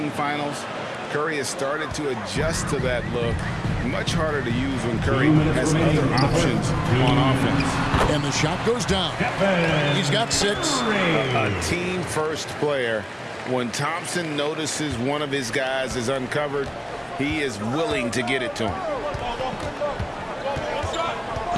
finals. Curry has started to adjust to that look. Much harder to use when Curry has other options on offense. And the shot goes down. He's got 6. A team-first player. When Thompson notices one of his guys is uncovered, he is willing to get it to him.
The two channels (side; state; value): both; identical; correlation 1.00